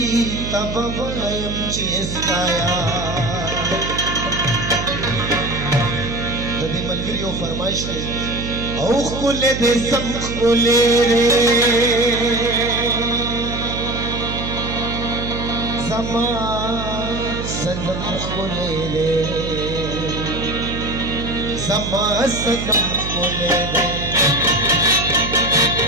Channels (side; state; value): right; noise; hum, 6 dB below the sound